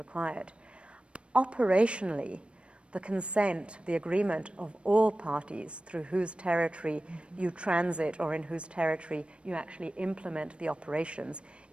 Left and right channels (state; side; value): late; left; 0.059 ms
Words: Operationally, the consent, the agreement of all parties through whose territory you transit or in whose territory you actually implement the operations